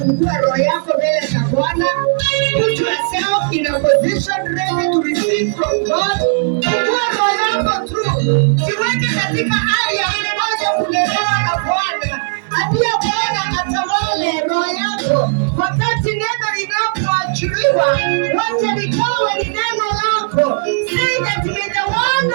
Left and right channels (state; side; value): silent; left; digital silence